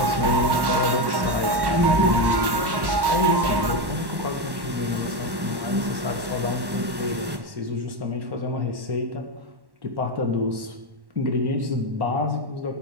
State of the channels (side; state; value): left; late; 1.1 ms